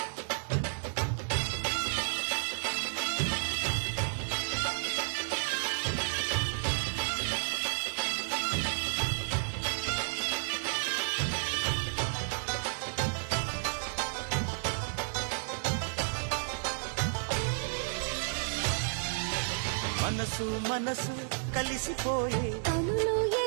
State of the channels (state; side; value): silent; left; 56 dB below the other